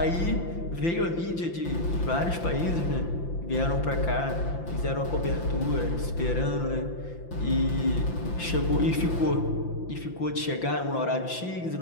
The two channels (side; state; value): right; late; 5.9 ms